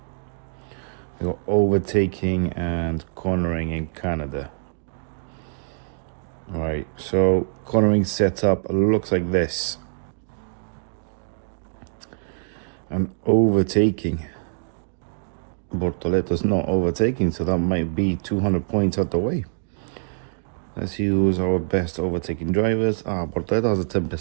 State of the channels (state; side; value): silent; left; digital silence